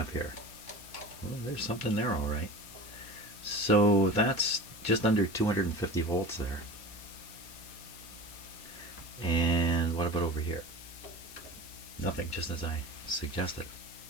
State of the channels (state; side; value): noise; left; hiss, 17 dB below the sound